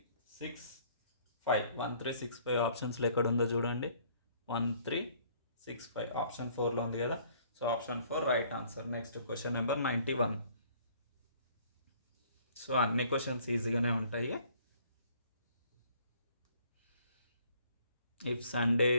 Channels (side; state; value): both; inverted; correlation -0.59